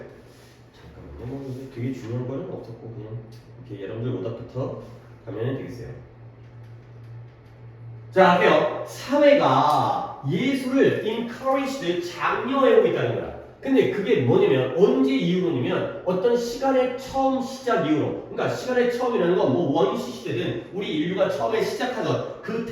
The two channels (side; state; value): both; identical; correlation 1.00